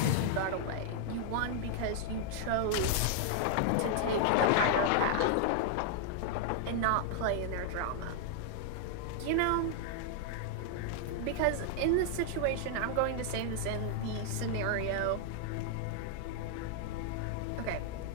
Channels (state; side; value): different; both; correlation 0.00